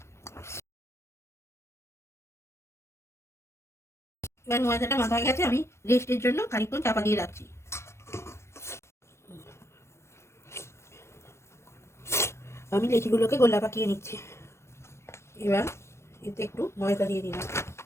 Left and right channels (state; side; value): late; right; 0.13 ms